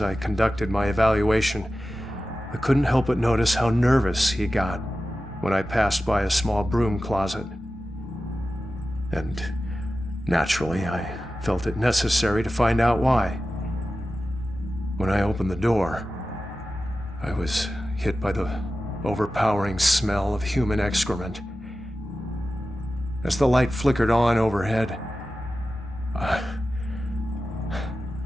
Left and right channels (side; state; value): both; normal; correlation 0.94